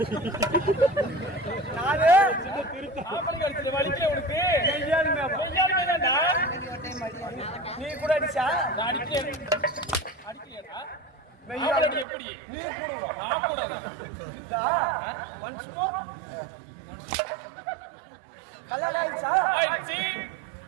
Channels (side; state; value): left; drops out; at 12.1 s